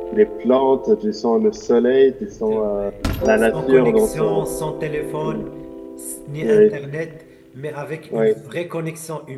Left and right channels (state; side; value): identical; both; correlation 1.00